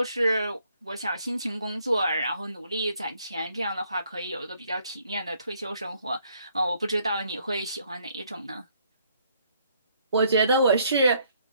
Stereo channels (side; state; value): both; inverted; correlation -0.68